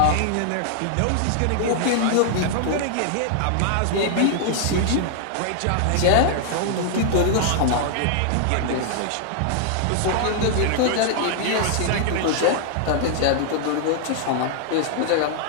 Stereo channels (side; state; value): both; different; correlation 0.00